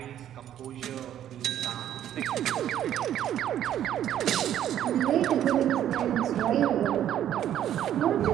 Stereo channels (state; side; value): quieter; left; 10.9 dB